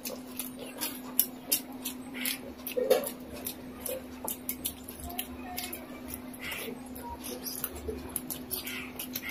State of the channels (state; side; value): identical; both; correlation 1.00